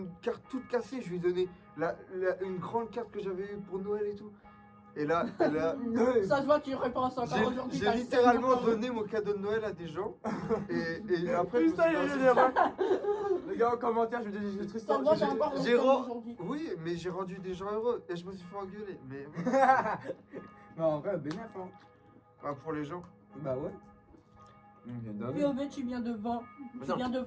carte toute cassée. Je lui ai donné une grande carte que j'avais eue pour Noël et tout. Et là, Ça se voit que tu repenses encore aujourd'hui. j'ai t'as le littéralement seum encore. donné mon cadeau de Noël à des gens. Et après, je me Putain, suis il y a lancé- des erreurs. Les gars en commentaire, je vais dire des trucs Ça se voit, t'as encore j'ai le seum ren- aujourd'hui. Oui, mais j'ai rendu des gens heureux. Et je me suis fait engueuler. Mais Mais en vrai, bénéf, hein. bah, pour les gens. Bah ouais. POV, tu viens de vendre. Tu Non. viens de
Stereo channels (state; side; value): identical; both; correlation 1.00